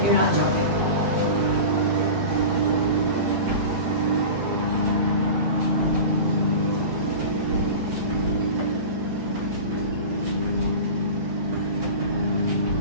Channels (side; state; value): left; late; 8.7 ms